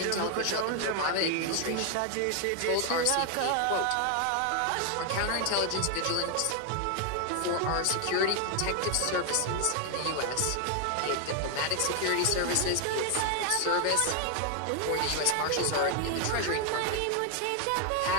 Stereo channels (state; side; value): different; both; correlation 0.00